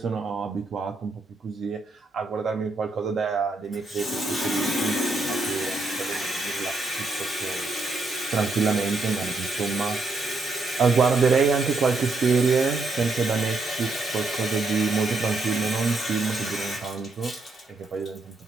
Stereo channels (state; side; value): quieter; left; 3.4 dB